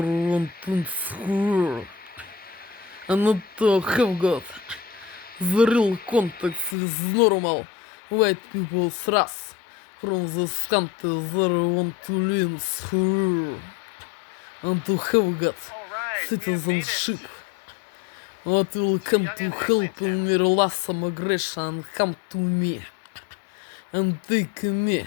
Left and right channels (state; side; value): drops out; right; at 6.8 s